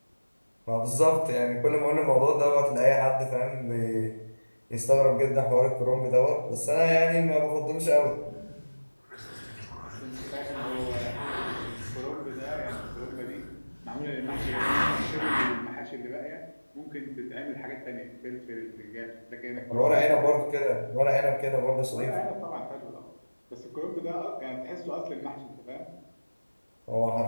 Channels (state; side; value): inverted; both; correlation -1.00